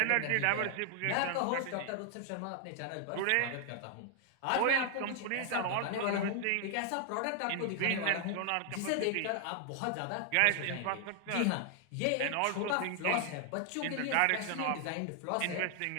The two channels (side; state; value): both; different; correlation 0.00